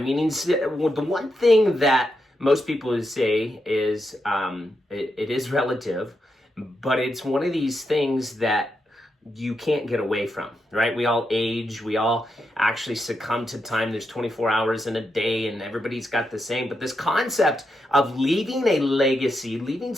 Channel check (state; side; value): normal; both; correlation 0.84